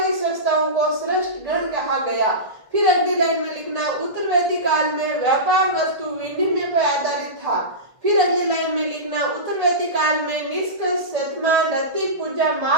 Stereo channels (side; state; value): left; late; 1.5 ms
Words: संस्थाओं को श्रेष्ठ गण कहा गया। फिर अगली लाइन में लिखना, उत्तर वैदिक काल में व्यापार वस्तु विनिमय पर आधारित था। फिर अगली लाइन में लिखना, उत्तर वैदिक काल में निष्कर्ष शतमान रति पूजा